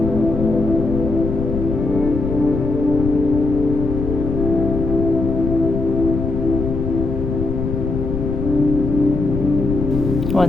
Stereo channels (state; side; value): noise; left; rumble, 3 dB below the sound